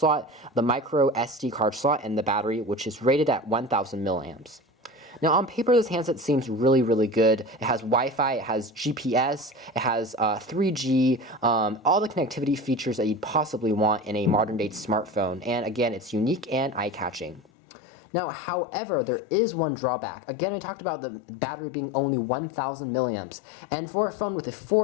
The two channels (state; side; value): drops out; right; at 17.4 s